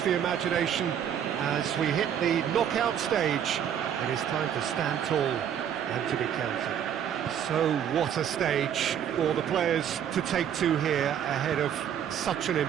the imagination as we hit the knockout stage. It is time to stand tall and to be counted. So what a stage for the players to take to here ahead of such an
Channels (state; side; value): quieter; left; 9.1 dB